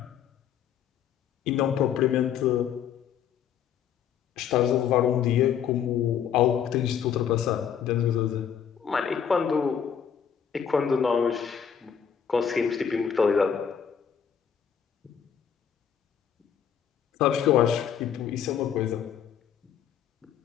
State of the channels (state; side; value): quieter; right; 8.2 dB